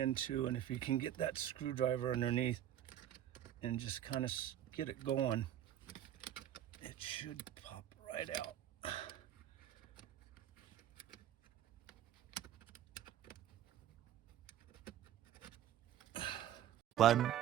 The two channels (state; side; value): quieter; left; 11.4 dB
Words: and if you can get that screwdriver underneath and just kind of get it going, it should pop right out. 1